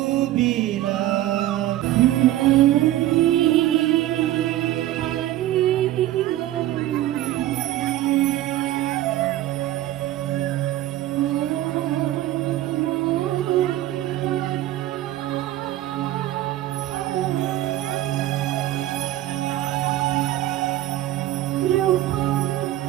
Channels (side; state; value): left; quieter; 14.4 dB